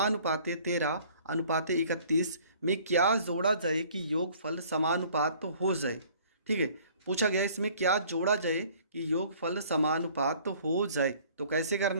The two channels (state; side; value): inverted; both; correlation -0.54